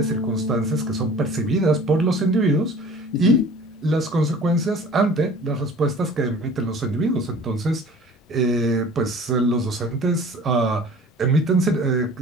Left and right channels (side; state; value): both; normal; correlation 0.45